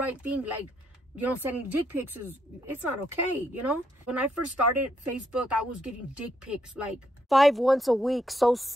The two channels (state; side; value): normal; both; correlation 0.76